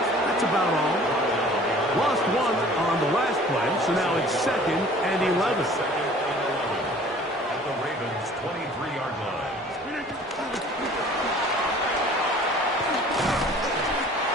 That's about all. Lost one on the last play, so now it's 2nd and 11. At the Ravens' 23-yard line.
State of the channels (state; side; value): normal; both; correlation 0.50